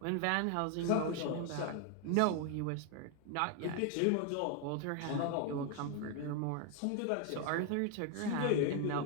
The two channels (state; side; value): different; both; correlation 0.01